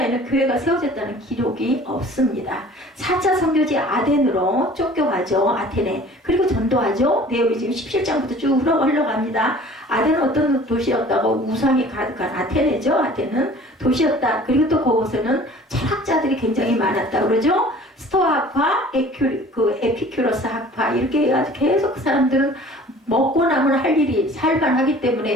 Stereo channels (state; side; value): normal; both; correlation 0.47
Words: 교회가 세워졌다는 기록이 없습니다. 4차 선교지 아덴으로 쫓겨가죠. 아테네. 그리고 전도하죠. 내용이 지금 17장부터 쭉 흘러갑니다. 아덴은 어떤 도시였다고? 우상이 가득한 아테네죠. 아테는 도시였다. 그리고 또 그곳에는 철학자들이 굉장히 많았다 그러죠. 스토아 학파, 에피큐러스 학파 이렇게 해가지고 계속 그 사람들은 먹고 나면 할 일이 살만하기